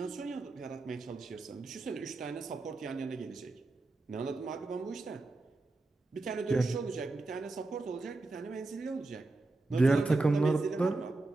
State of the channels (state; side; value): quieter; left; 3.2 dB